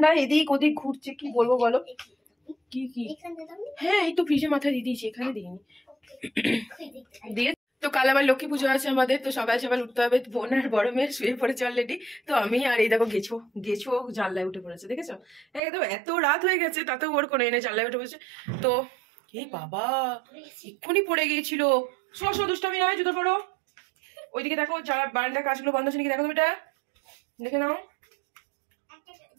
এদিক ওদিক ঘুরছে। কি বলবো বলো? কি হ্যাঁ, এই তো ফ্রিজের মাথায় দিয়ে দিয়েছি, এখানে দিইনি দিয়ে। তো কাল আবার লক্ষ্মী পুজো আছে আমাদের, তো সকাল সকাল উঠতে হবে। বোন আর বড় মেয়ের শুয়ে পড়েছে অলরেডি। তো আমি আর এই দেখো গেছো জানলায় উঠে পড়েছে, দেখেছো? একদম এত রাত হয়ে গেছে, তাতেও ওর কোনো এনে জানলায় উঠে পড়েছে। তো এই বাবা এক্ষুনি পড়ে গিয়েছিল। দুষ্টামি নয়, জুতো পড়ো। ওইদিকে দেখো যারা বারান্দার কাজগুলো বন্ধ আছে নাকি দেখো, তুমি এটা দেখে নাও।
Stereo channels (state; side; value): drops out; left; at 15.6 s